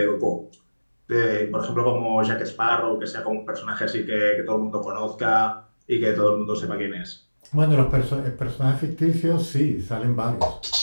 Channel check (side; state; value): both; inverted; correlation -1.00